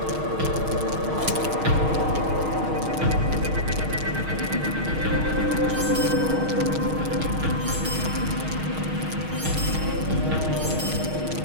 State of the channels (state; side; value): late; left; 6.4 ms